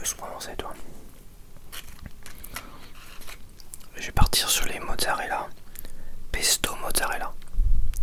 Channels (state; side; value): identical; both; correlation 1.00